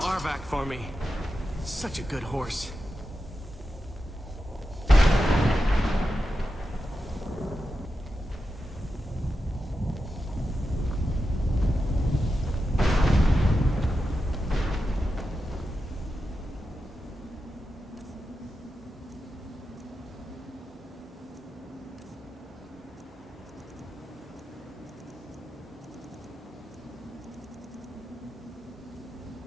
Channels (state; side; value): normal; both; correlation 0.90